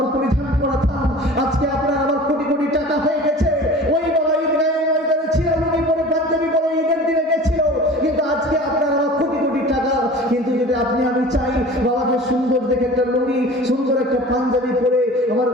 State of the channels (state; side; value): normal; both; correlation 0.40